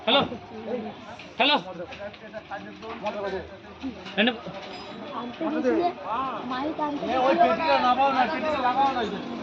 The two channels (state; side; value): identical; both; correlation 1.00